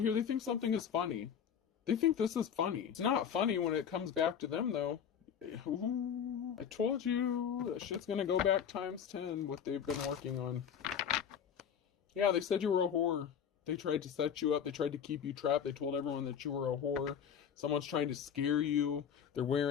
They think something is funny. They think this is funny. It's not funny when it comes back to them, though. Ooh, I told you that shit's gonna go back times 10 what they've been working on. Yeah, they said you were a whore. They tried to set you up. They tried to keep you trapped. They told everyone that you were a whore. Someone's trying to scare you. They're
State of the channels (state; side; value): quieter; right; 8.0 dB